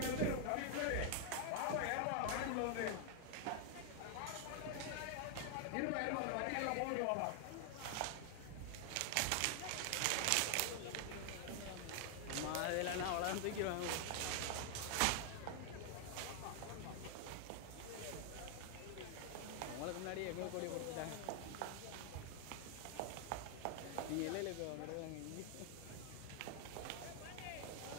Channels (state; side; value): different; both; correlation 0.00